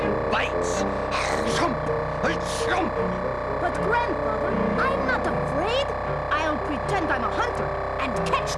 bites. Chomp! Chomp! But Grandfather, I'm not afraid. I'll pretend I'm a hunter and catch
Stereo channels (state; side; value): identical; both; correlation 1.00